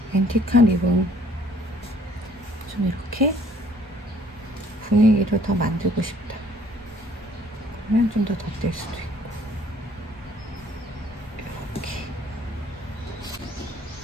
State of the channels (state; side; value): normal; both; correlation 0.59